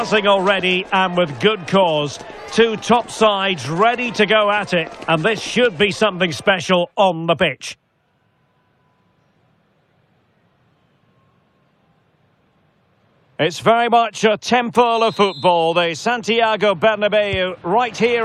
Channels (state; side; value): identical; both; correlation 1.00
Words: already, and with good cause. Two top sides ready to go at it, and this should be something special on the pitch. It's very much a temple of football, the Santiago Bernabeu, right